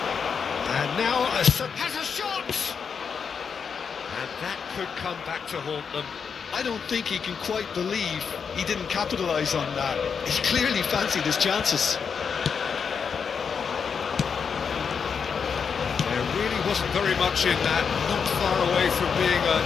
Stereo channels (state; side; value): quieter; right; 6.3 dB